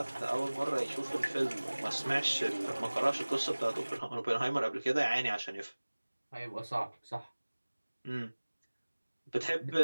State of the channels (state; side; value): inverted; both; correlation -1.00